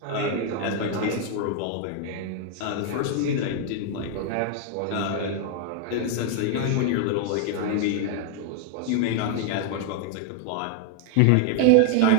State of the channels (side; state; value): both; different; correlation 0.00